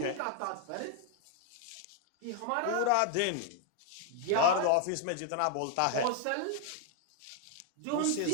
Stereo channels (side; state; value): both; different; correlation 0.00